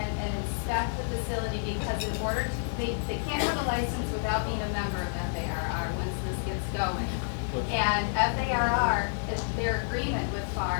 and inspect the facility, because in order to, they can't have a license without being a member of FARR once this gets going. And FARR, their agreement with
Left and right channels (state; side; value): silent; right; 55 dB below the other